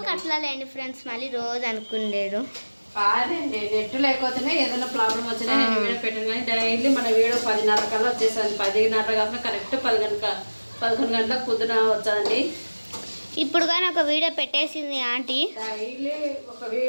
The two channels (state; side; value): inverted; both; correlation -1.00